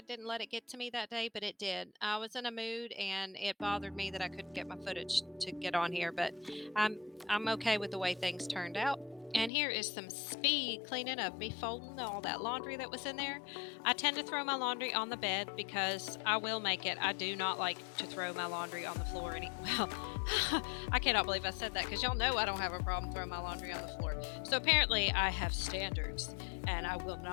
didn't let it get to me that day, but it did. I was in a mood, and it bothered me that I couldn't get my footage to get on here, but I'm okay with the way things turned out. And here is some speed cleaning of me folding all that laundry that was in there. I tend to throw my laundry on the bed because I will make it. I do not like to throw my laundry on the floor. Well, I cannot believe I said that because y'all know I don't have a problem throwing my laundry on the floor. So apparently I have standards and I will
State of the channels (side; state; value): right; drops out; at 9.5 s